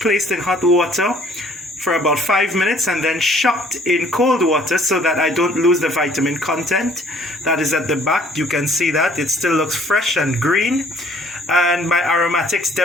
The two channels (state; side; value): normal; both; correlation 0.58